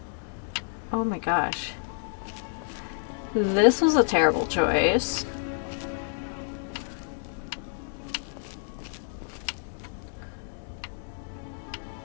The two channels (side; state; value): right; silent; digital silence